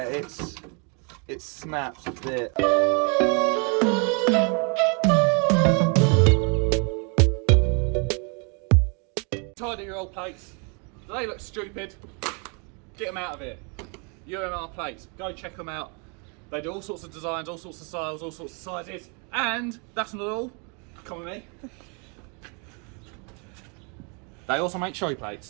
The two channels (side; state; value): left; quieter; 35.3 dB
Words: it snaps a bit. Tidy your old plates. They look stupid. Get them out of here. UMR plates. Go check them out. They do all sorts of designs, all sorts of styles, all sorts of sizes. And that's not all. Come with me. They also make show